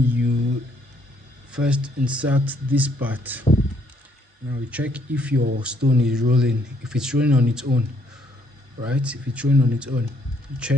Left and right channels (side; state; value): both; normal; correlation 0.68